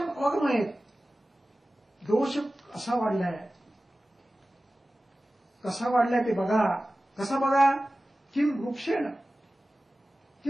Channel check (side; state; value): both; normal; correlation 0.96